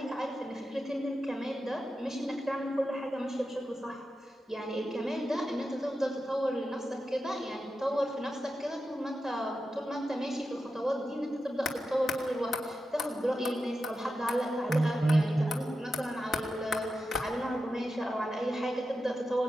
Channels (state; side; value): normal; both; correlation 0.90